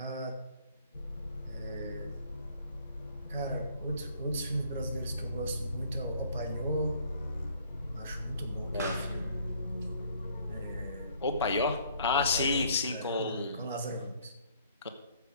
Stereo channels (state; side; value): inverted; both; correlation -0.60